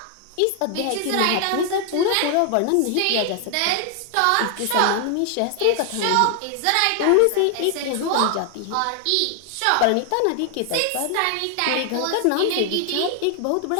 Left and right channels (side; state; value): both; different; correlation 0.00